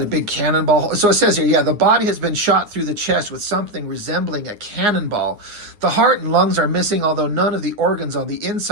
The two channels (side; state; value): left; late; 9.6 ms